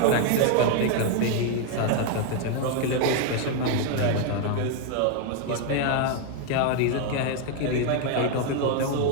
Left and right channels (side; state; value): both; different; correlation 0.01